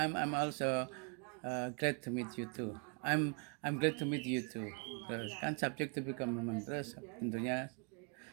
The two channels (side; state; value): left; quieter; 36.5 dB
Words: also glad to meet you too. I'm glad to meet you too. Terus kan subject to be complement, terus tentunya